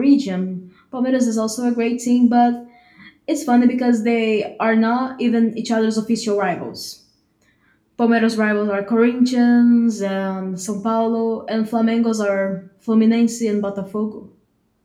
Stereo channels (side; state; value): both; identical; correlation 1.00